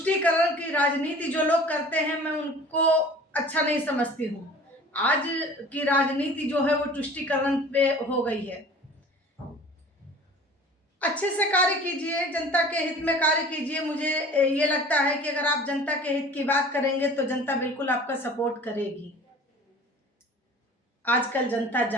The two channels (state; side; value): normal; both; correlation 0.44